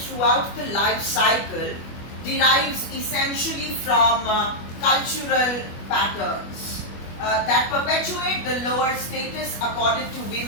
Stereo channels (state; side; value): late; right; 25 ms